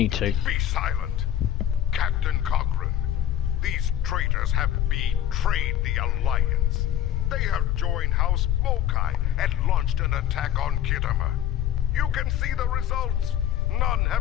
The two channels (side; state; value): right; quieter; 11.0 dB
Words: to. Be silent. Captain Cochrane, these traitors have betrayed the Alliance. They have joined House Mokai and launched an attack on Khitomer. You can see the results. None